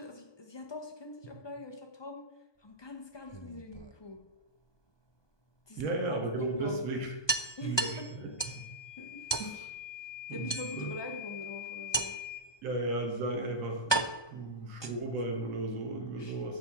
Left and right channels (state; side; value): late; right; 1.2 ms